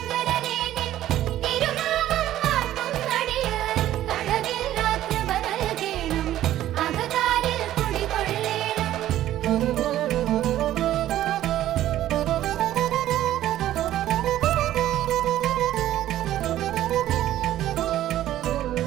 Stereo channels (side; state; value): left; quieter; 13.2 dB